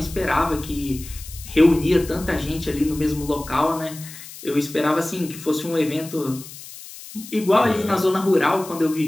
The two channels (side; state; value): left; noise; hiss, 15 dB below the sound